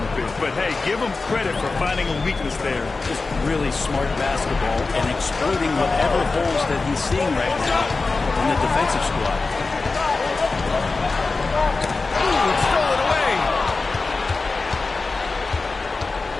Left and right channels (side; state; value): right; quieter; 3.8 dB